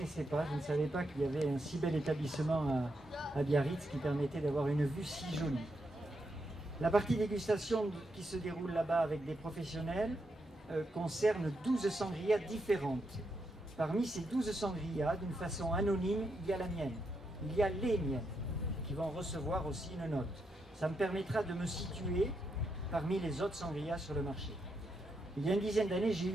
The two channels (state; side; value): normal; both; correlation 0.82